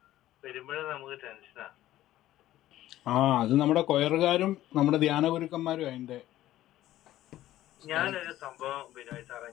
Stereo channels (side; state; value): right; quieter; 14.3 dB